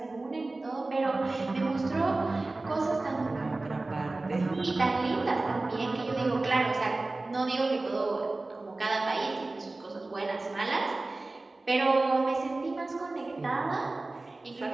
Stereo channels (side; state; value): left; quieter; 3.1 dB